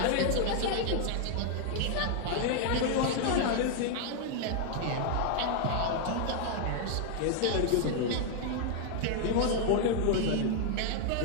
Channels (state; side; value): different; both; correlation 0.00